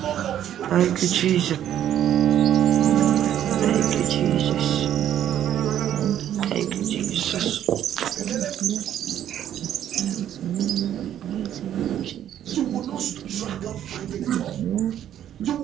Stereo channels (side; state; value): left; quieter; 10.8 dB